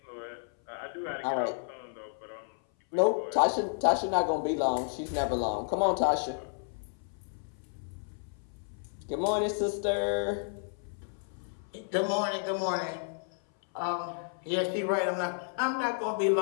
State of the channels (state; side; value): silent; right; 57 dB below the other